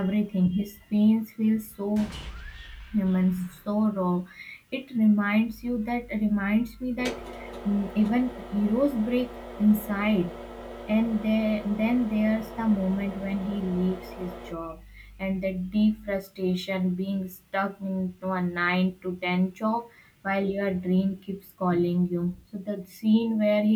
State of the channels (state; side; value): identical; both; correlation 1.00